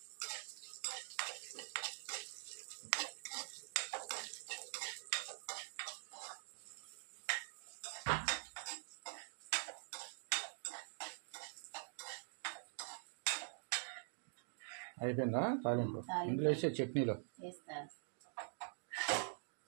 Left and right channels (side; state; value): left; silent; digital silence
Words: అయిపోయిందా తాలింపు? ఇందులో వేసే చట్నీలో వేస్తా.